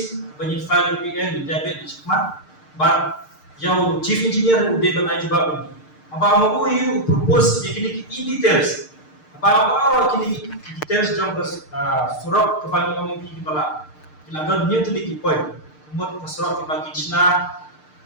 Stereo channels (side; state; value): right; late; 6.6 ms